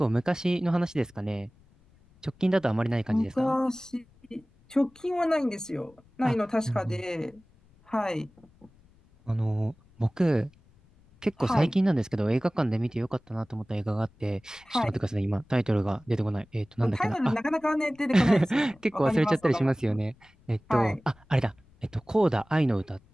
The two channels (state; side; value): noise; left; rumble, 30 dB below the sound